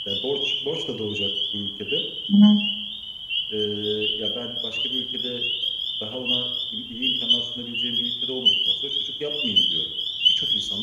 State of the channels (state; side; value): identical; both; correlation 1.00